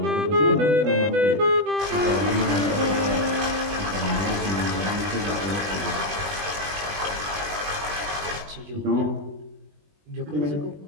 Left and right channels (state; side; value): late; left; 20 ms